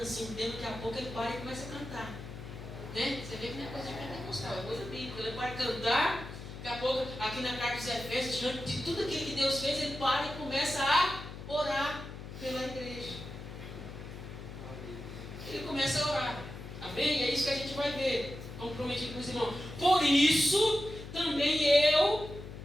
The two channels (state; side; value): noise; left; hum, 11 dB below the sound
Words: assim, um tempo, daqui a pouco ele para e começa a cantar. Né? Você vê que não é coisa de pentecostal, é coisa bíblica. Ele para cantar, daqui a pouco, aqui na carta dos Efésios, diante de tudo aquilo que Deus fez, ele para e começa a orar pela igreja. Ele começa a orar. Amém? É isso que a gente vai ver. Comprometido com os irmãos. Por isso, também eu